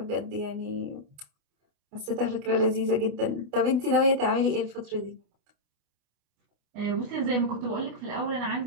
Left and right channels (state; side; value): late; left; 28 ms